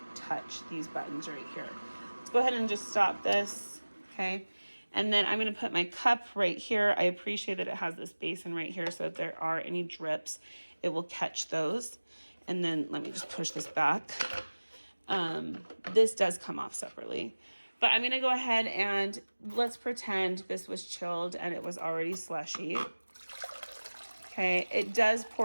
touch these buttons right here. Let's go ahead and just stop this, okay? And then I'm going to put my cup right here. I appreciate that it has this basin right here, so if there are any drips, it will catch those. And then let me just push this back. This does come off separately. But I'm going to go ahead and let's pretend this was chilled and it was already slushy. Okay, it does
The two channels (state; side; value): inverted; both; correlation -1.00